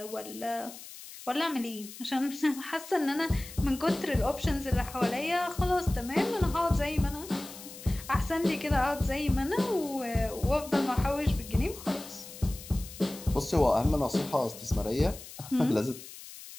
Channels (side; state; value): left; noise; hiss, 15 dB below the sound